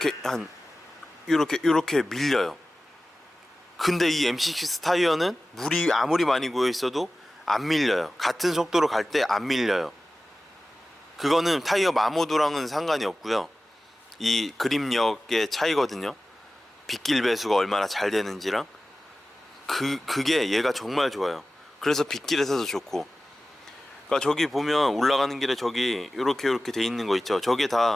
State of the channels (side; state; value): both; normal; correlation 0.96